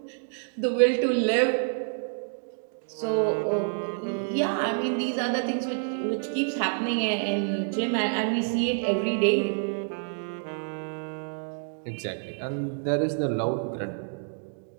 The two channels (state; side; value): silent; left; digital silence